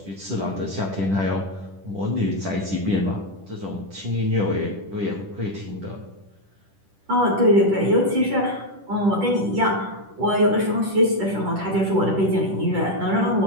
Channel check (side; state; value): left; late; 10 ms